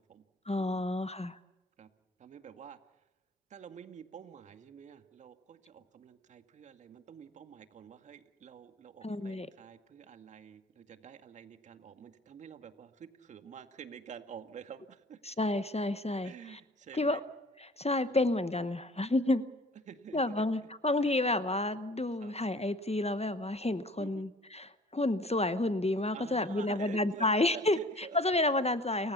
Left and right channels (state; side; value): normal; both; correlation 0.50